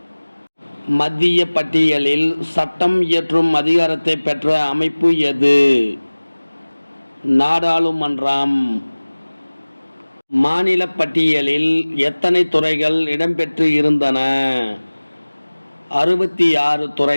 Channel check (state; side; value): inverted; both; correlation -1.00